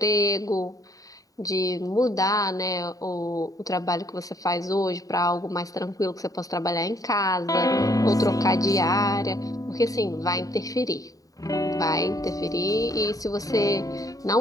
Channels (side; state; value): right; late; 0.17 ms